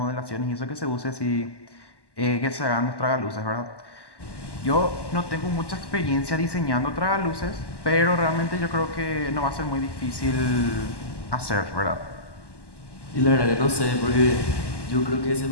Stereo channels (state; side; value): late; right; 1.1 ms